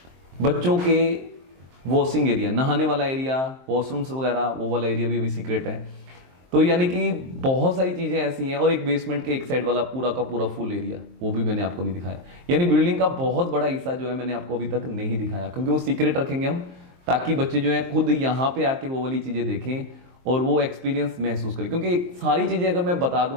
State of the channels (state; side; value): late; left; 23 ms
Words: बच्चों के वॉशिंग एरिया, नहाने वाला एरिया, वॉशरूम्स वगैरह, वो वाला एरिया भी अभी सीक्रेट है। तो यानी कि बहुत सारी चीजें ऐसी हैं। और एक बेसमेंट के एक साइड वाला पूरा का पूरा फुल एरिया, वो भी मैंने आपको नहीं दिखाया। यानी बिल्डिंग का बहुत बड़ा हिस्सा जो है मैंने आपको अभी तक नहीं दिखाया, क्योंकि वो सीक्रेट रखेंगे हम, ताकि बच्चे जो है खुद यहाँ पे आके वो वाली चीजें देखें और वो एक्सपीरियंस महसूस करें। क्योंकि सारी चीजें अगर मैं बता